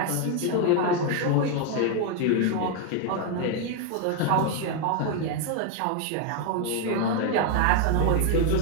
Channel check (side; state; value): both; different; correlation 0.01